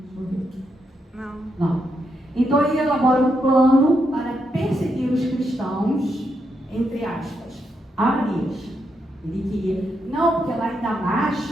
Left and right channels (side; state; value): both; normal; correlation 0.81